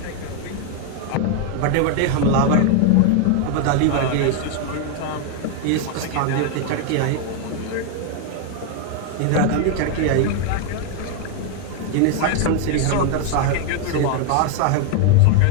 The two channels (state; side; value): different; both; correlation 0.00